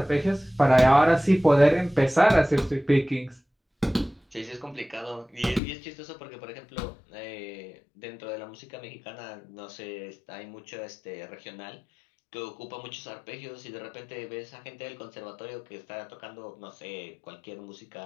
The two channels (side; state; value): right; drops out; at 5.6 s